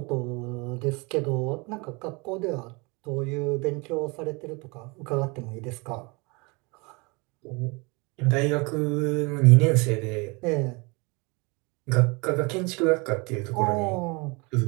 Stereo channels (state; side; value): quieter; left; 28.3 dB